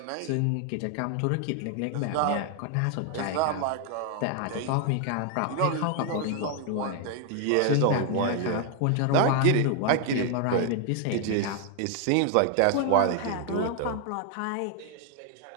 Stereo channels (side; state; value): both; different; correlation 0.00